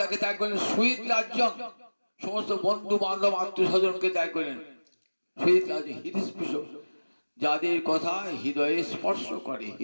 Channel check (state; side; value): inverted; both; correlation -1.00